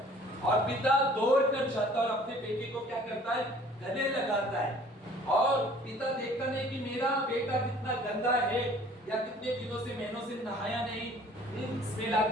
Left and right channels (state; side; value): normal; both; correlation 0.52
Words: और पिता दौड़ कर जाता और अपने बेटे को क्या करता है, गले लगाता है। और पिता देखता नहीं कि मेरा बेटा कितना गंदा है या कितने दिनों से महीनों से नहाया नहीं, स्मेल